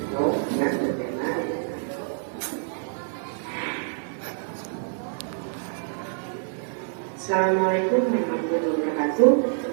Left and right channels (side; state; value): left; silent; digital silence